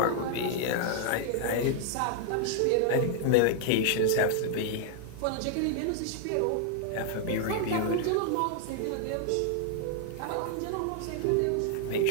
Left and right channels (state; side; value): different; both; correlation -0.01